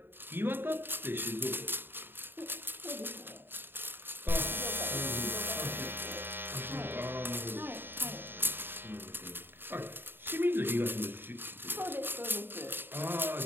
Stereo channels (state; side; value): late; left; 0.10 ms